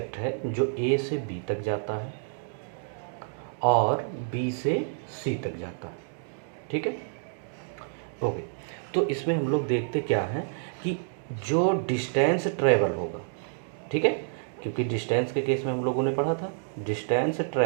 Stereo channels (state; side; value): silent; left; digital silence